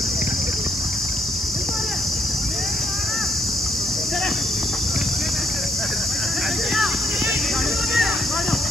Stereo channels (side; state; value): both; normal; correlation 0.72